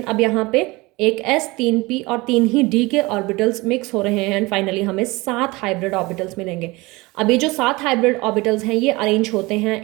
अब यहाँ पे एक S, 3 P और 3 ही D के ऑर्बिटल्स मिक्स हो रहे हैं एंड फाइनली हमें 7 हाइब्रिड ऑर्बिटल्स मिलेंगे। अब ये जो 7 हाइब्रिड ऑर्बिटल्स हैं ये अरेंज होते हैं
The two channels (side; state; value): left; quieter; 22.8 dB